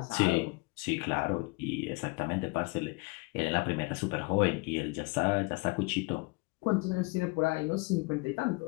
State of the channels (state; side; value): quieter; right; 27.4 dB